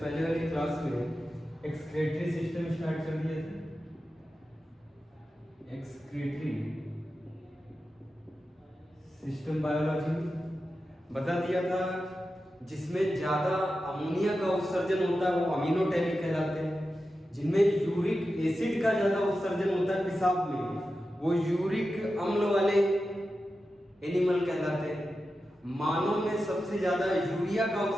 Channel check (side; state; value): both; normal; correlation 0.91